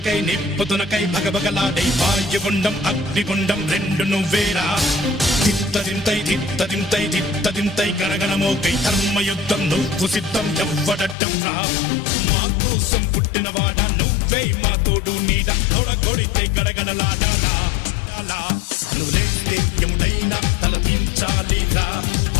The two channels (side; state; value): right; drops out; at 11.2 s